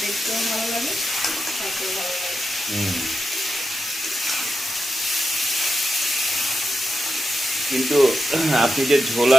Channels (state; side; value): normal; both; correlation 0.88